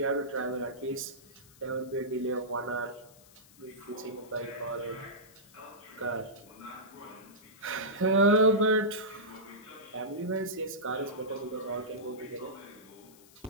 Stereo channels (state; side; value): noise; left; hiss, 24 dB below the sound